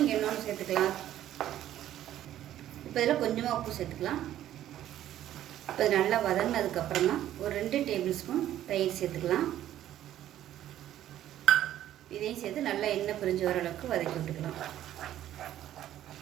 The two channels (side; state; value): left; quieter; 12.3 dB